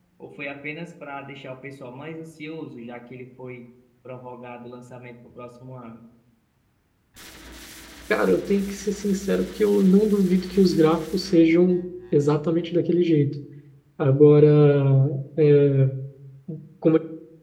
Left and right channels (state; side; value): identical; both; correlation 1.00